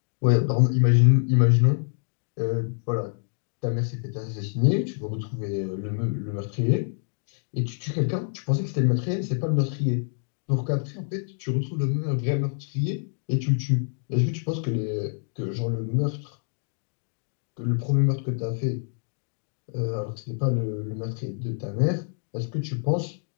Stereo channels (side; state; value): right; silent; 59 dB below the other